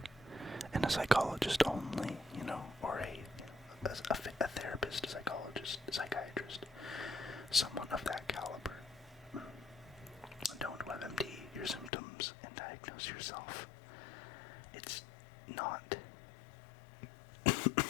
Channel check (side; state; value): right; drops out; at 11.9 s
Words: and a psychologist only, you know, or a therapist, a psychologist, a psychiatrist, someone of that caliber. Don't WebMD your symptoms and diagnose yourself. It's not...